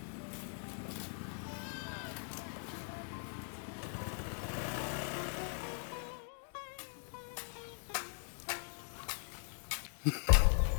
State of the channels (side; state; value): right; silent; 51 dB below the other